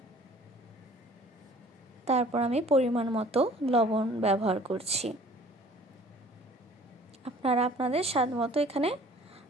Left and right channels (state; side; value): normal; both; correlation 0.51